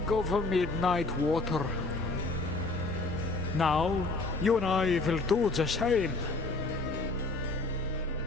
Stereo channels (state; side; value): quieter; right; 3.3 dB